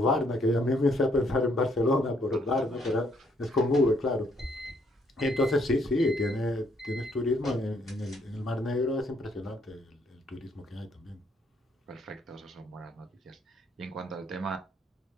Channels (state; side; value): normal; both; correlation 0.69